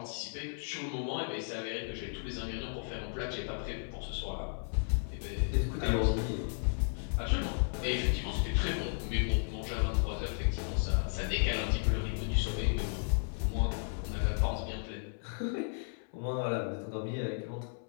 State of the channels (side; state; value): right; silent; 55 dB below the other